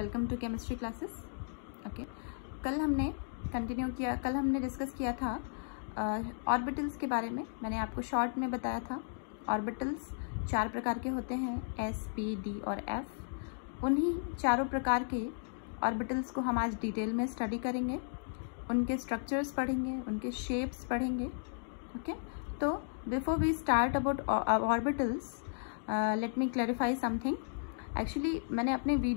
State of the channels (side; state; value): right; silent; digital silence